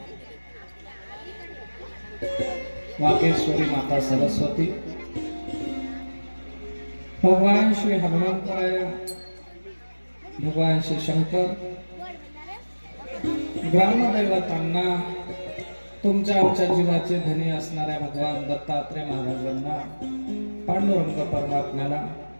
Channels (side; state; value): both; inverted; correlation -1.00